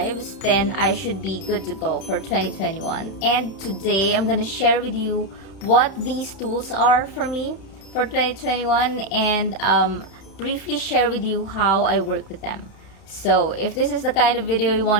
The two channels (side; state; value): right; late; 31 ms